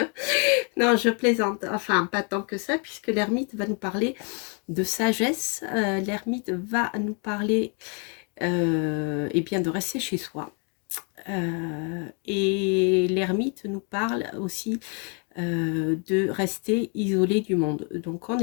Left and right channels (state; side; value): quieter; right; 37.6 dB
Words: Non, je plaisante. Enfin, pas tant que ça, puisque l'ermite va nous parler de sagesse. L'ermite va nous parler eh bien, de rester chez soi. Et l'ermite nous parle aussi de rester isolé du monde. Donc, en